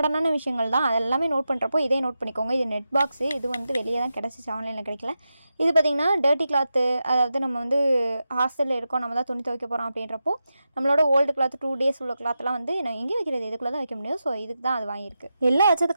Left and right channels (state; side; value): inverted; both; correlation -0.90